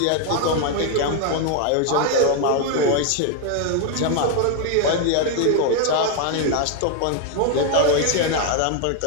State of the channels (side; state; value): both; different; correlation 0.01